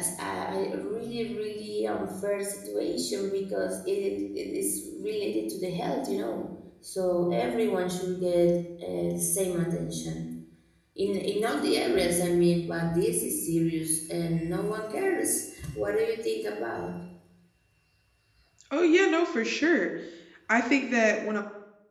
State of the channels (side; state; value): both; identical; correlation 1.00